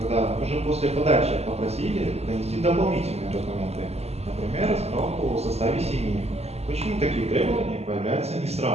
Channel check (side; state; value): left; late; 0.30 ms